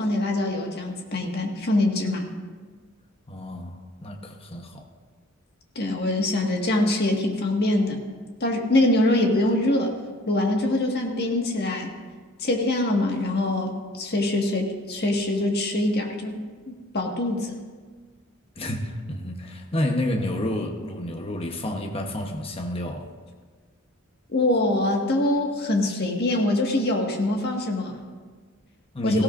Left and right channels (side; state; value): both; normal; correlation 0.52